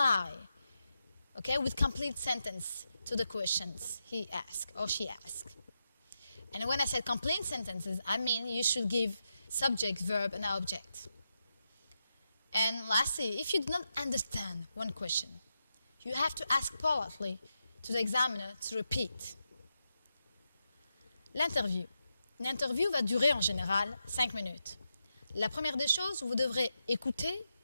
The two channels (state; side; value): inverted; both; correlation -0.86